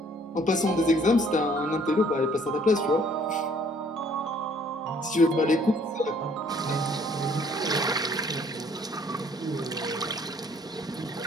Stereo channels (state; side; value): normal; both; correlation 0.61